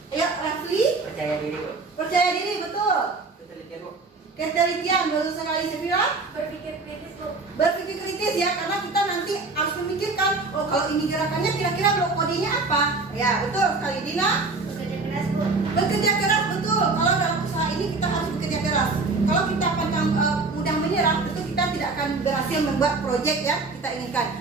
Ya, Rafli? Percaya diri, Bu. Percaya diri, betul. Ketelitian, Bu. Ketelitian, baru sekali Sefira. Berpikir kritis, Bu. Berpikir kritis ya, karena kita nanti harus memikirkan, oh kalau ini gerakannya kira-kira blok kodenya apa? Ya, betul sekali. Dina? Bekerja keras, Bu. Bekerja keras, betul. Kalau dalam usaha ini kita harus bekerja keras. Kalau kita mudah menyerah, tentu kita tidak akan berhasil membuat proyek yang kita inginkan.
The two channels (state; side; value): quieter; left; 3.8 dB